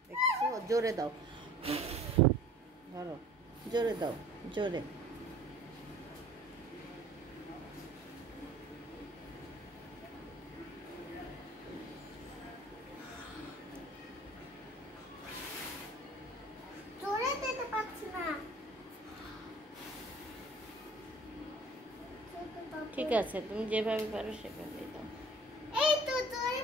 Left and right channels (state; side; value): normal; both; correlation 0.48